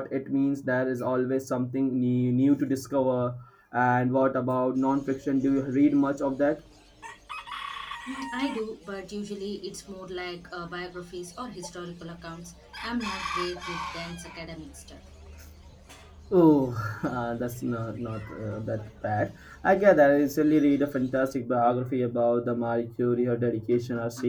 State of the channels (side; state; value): both; identical; correlation 1.00